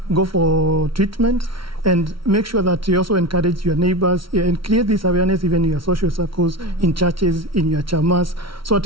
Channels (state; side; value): late; left; 0.74 ms